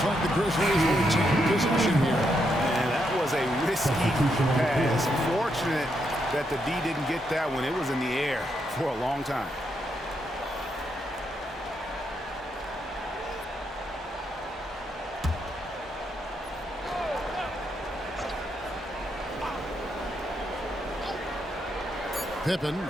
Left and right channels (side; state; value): both; normal; correlation 0.79